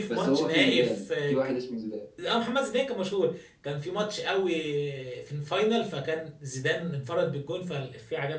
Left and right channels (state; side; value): identical; both; correlation 1.00